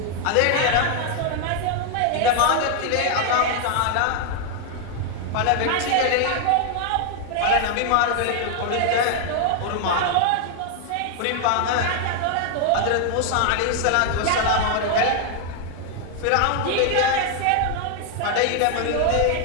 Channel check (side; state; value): both; different; correlation 0.00